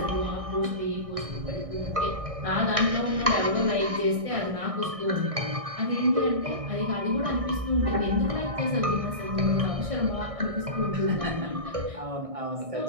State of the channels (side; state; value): left; late; 1.6 ms